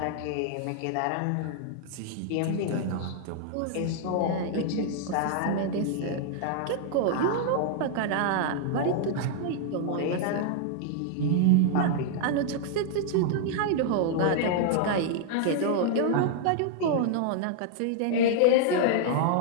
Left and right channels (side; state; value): both; different; correlation -0.01